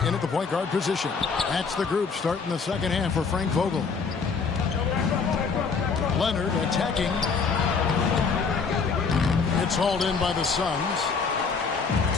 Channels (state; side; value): quieter; right; 5.2 dB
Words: in at the point guard position. That's the group starting the second half for Frank Vogel. Leonard attacking. It's hauled in by the Suns.